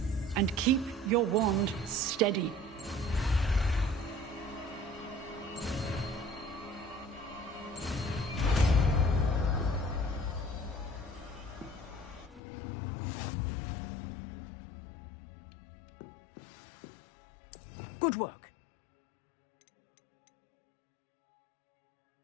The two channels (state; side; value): drops out; right; at 12.4 s